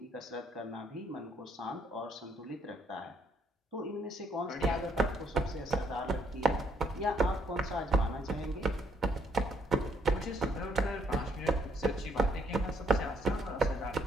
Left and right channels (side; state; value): both; normal; correlation 0.70